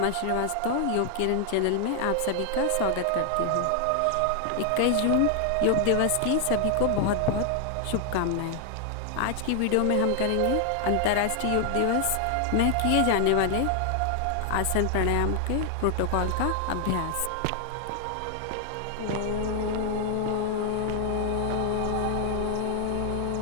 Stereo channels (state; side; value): different; both; correlation 0.00